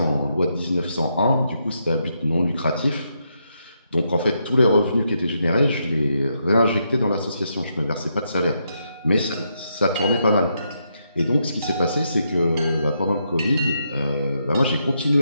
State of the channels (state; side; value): inverted; both; correlation -0.80